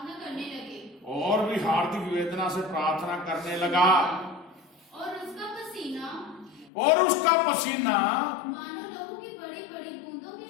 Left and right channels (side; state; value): right; drops out; at 6.7 s